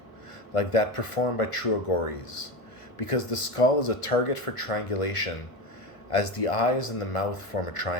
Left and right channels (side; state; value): right; late; 1.5 ms